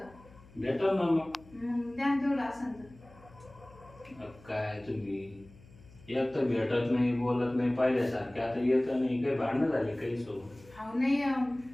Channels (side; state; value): left; noise; hum, 23 dB below the sound